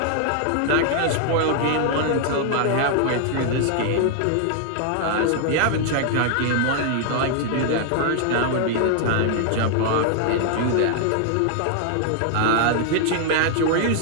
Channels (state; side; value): different; both; correlation -0.01